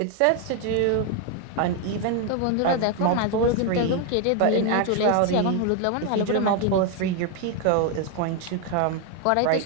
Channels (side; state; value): both; different; correlation 0.01